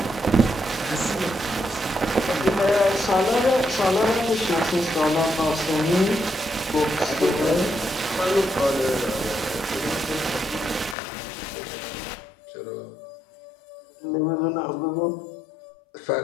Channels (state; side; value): drops out; right; at 11.0 s